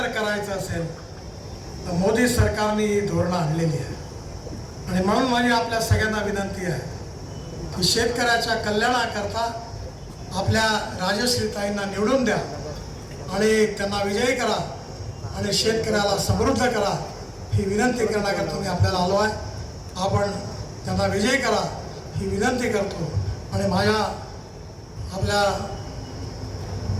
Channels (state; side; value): identical; both; correlation 1.00